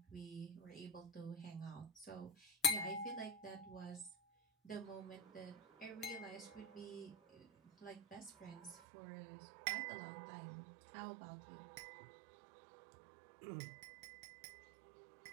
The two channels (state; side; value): drops out; left; at 8.8 s